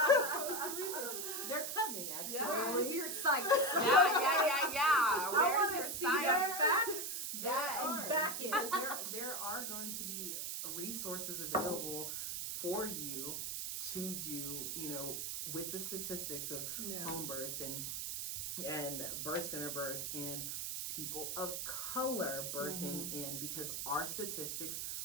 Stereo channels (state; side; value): noise; right; hiss, 3 dB below the sound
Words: They're coming, actually. Where's your site? Yeah. Where's your site? Facts? And back in. There are going to be resources available for you to do, you know, with the statistics of home births and birth center births and people of color birthing in, because our statistics,